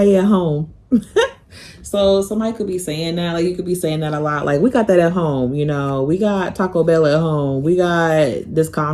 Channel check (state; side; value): identical; both; correlation 1.00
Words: at home. So somebody could be saying that, like you could be saying that a lot, like we got that at home, you know, we got Taco Bell at home, we got this